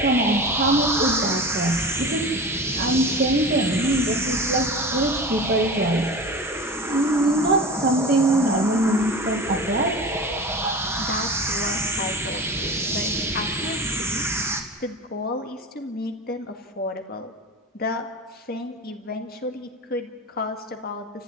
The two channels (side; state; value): both; normal; correlation 0.32